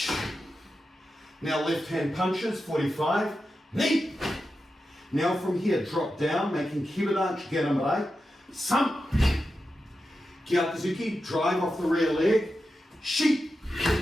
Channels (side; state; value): both; normal; correlation 0.90